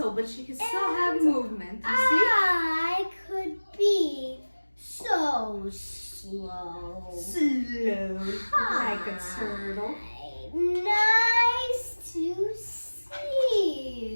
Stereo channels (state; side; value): inverted; both; correlation -1.00